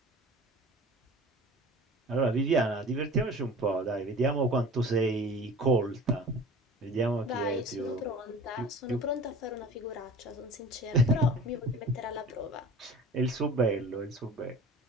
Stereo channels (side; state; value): both; normal; correlation 0.41